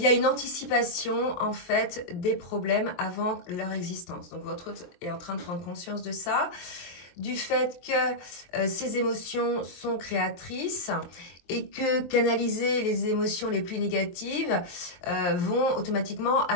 a une anticipation, en fait, des problèmes avant leur existence. Donc, votre autre est en train de prendre conscience de ça, du fait que ces émotions sont créatrices et que canaliser les émotions les plus négatives vont automatiquement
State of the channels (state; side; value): late; right; 23 ms